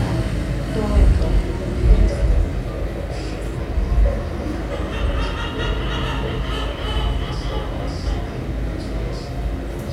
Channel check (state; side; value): identical; both; correlation 1.00